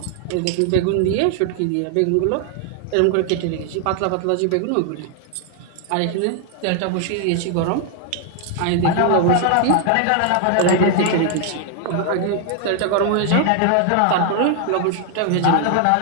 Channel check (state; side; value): different; both; correlation 0.00